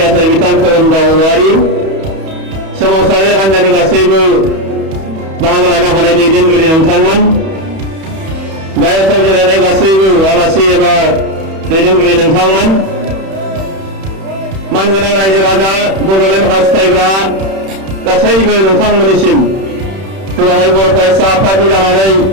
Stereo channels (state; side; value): late; left; 31 ms